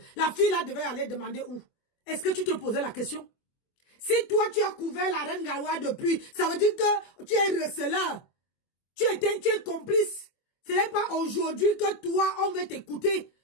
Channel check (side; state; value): right; late; 24 ms